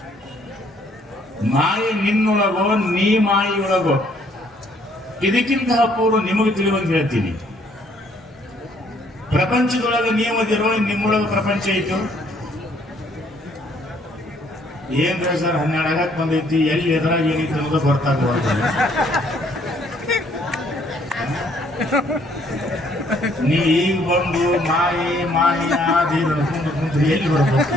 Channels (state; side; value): normal; both; correlation 0.65